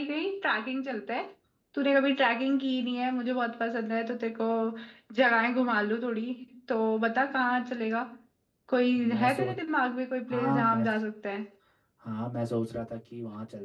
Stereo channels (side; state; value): both; identical; correlation 1.00